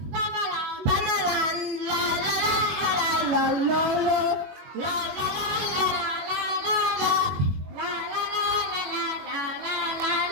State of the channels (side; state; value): left; late; 21 ms